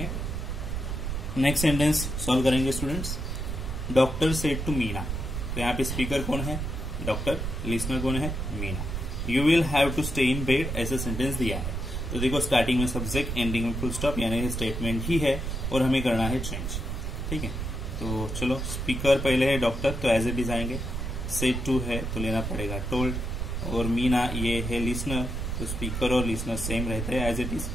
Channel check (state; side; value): noise; right; rumble, 3 dB below the sound